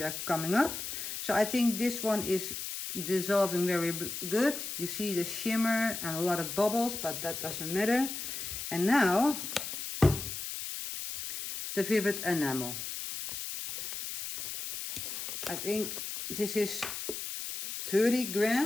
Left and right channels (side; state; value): left; noise; hiss, 6 dB below the sound